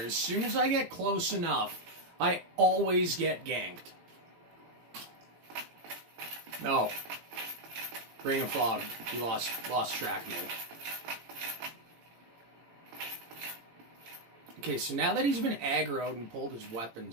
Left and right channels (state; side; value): late; left; 18 ms